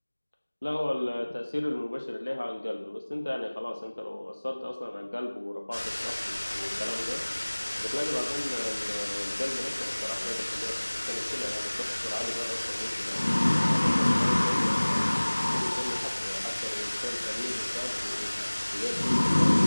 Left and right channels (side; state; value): both; inverted; correlation -1.00